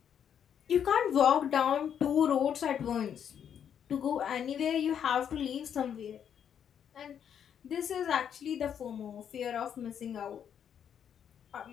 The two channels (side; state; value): right; quieter; 8.6 dB